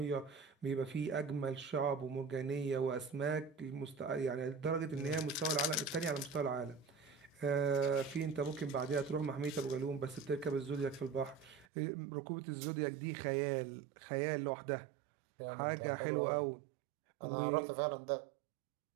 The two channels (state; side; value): drops out; left; at 11.7 s